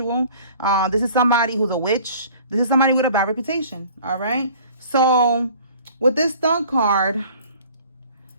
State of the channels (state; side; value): inverted; both; correlation -0.50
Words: This is somebody who's a witch. This is somebody with a bad reputation. All right. So with this Thug card,